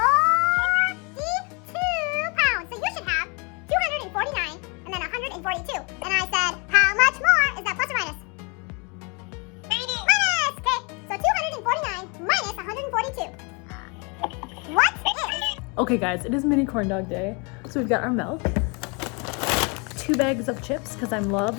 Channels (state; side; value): quieter; right; 31.9 dB